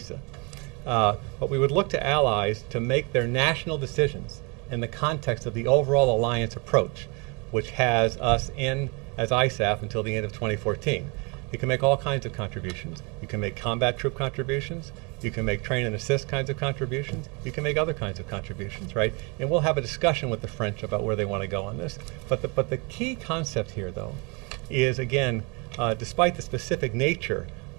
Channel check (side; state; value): left; quieter; 30.8 dB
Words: But we would look to allies to make their national decisions in the context of the overall alliance approach, which has us in as ISAF until the end of 2014. You can make all kinds of contributions. You can make combat troop contributions. You can make train and assist kinds of contributions. You can make other kinds of contributions, right? And we'll have a discussion with the French about where they want to go on this. But the key concept here, though, is, again, despite the specific nature